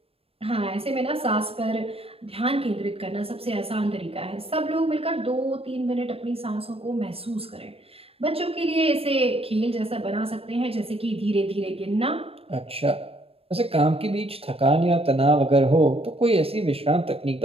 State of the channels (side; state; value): left; late; 0.28 ms